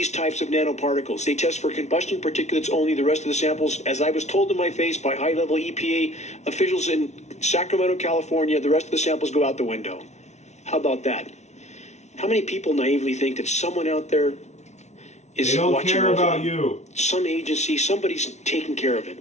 types of nanoparticles. They test for combustion particulates only. The rest of the samples, as I was told to my face by high-level EPA officials in Sacramento, California, the rest of the samples go out the window. How about that? How many people naively think that someone out there is watching? They don't care about you. Some agency, somebody's taking care of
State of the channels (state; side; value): late; right; 0.32 ms